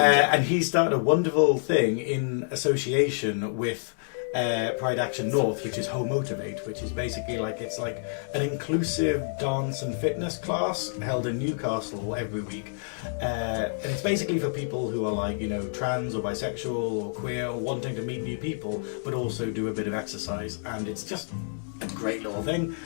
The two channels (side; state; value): right; silent; digital silence